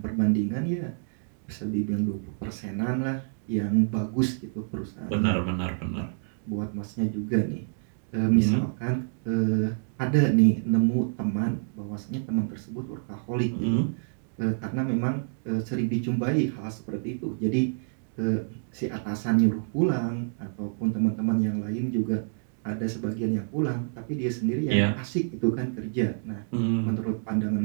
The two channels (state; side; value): silent; left; digital silence